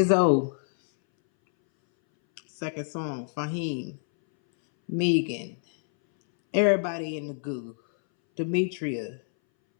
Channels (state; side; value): silent; right; 60 dB below the other